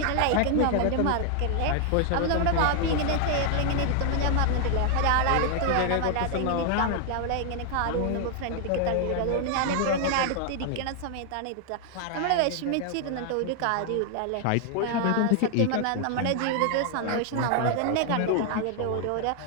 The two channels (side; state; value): both; different; correlation 0.00